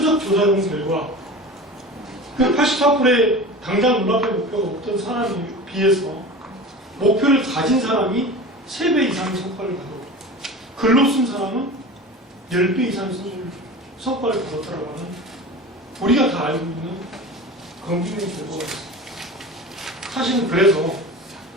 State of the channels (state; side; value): normal; both; correlation 0.33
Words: 조사해본 결과 그 84%의 당장 눈앞에 목표가 없던 사람에 비해서 목표를 가진 사람이 3배 이상의 성과를 가졌고 글로 쓴 사람은 10배 이상의 성과를 거뒀다라고 하는 우리가 다 알고 있는 검증된 결과가 있습니다. 사실은 그래서